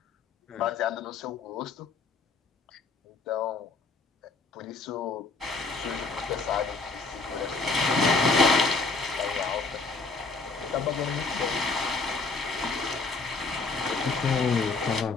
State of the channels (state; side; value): quieter; right; 4.0 dB